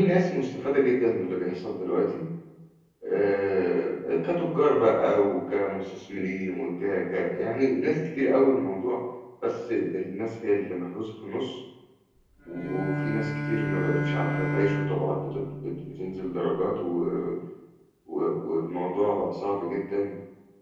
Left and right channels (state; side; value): identical; both; correlation 1.00